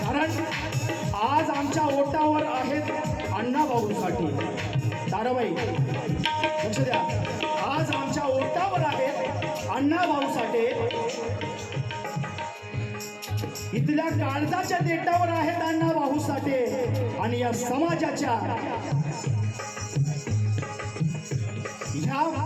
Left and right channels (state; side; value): identical; both; correlation 1.00